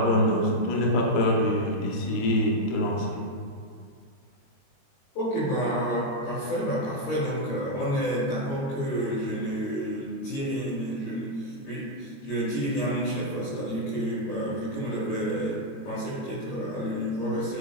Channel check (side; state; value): right; late; 22 ms